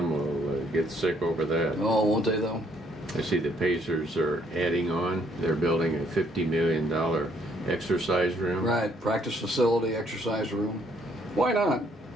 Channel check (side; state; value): both; normal; correlation 0.67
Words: get sick over that. Oh, won't they though? I see the Pacers are adding on. They're building a $50 million exercise room. Right. Practice facility, exercise room. Why not?